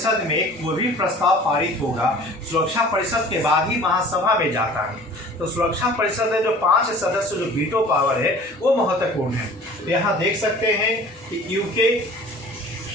में कोई भी प्रस्ताव पारित होगा, सुरक्षा परिषद के बाद ही महासभा में जाता है। तो सुरक्षा परिषद में जो 5 सदस्य जो वीटो पावर है वो महत्वपूर्ण है। तो यहाँ देख सकते हैं कि यूके,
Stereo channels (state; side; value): normal; both; correlation 0.45